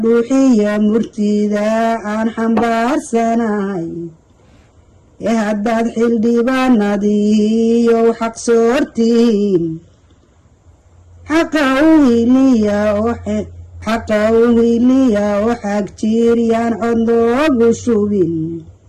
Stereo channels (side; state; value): both; identical; correlation 1.00